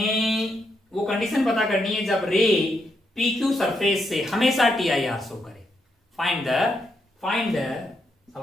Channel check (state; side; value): normal; both; correlation 0.80